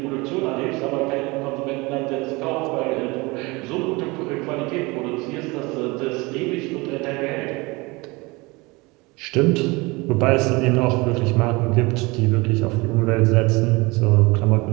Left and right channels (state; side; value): quieter; left; 24.5 dB